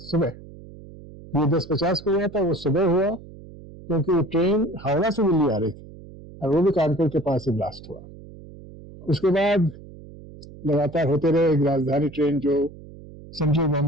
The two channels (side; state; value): right; noise; hum, 18 dB below the sound